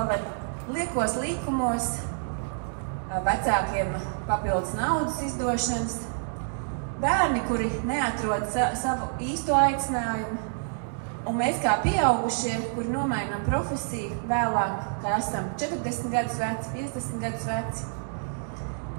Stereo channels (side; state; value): left; silent; digital silence